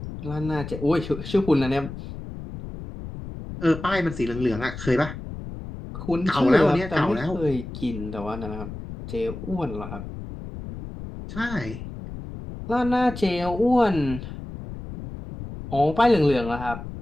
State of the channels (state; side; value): noise; left; rumble, 10 dB below the sound